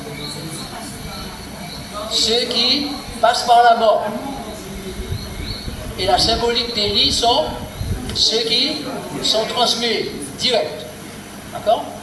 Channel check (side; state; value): both; identical; correlation 1.00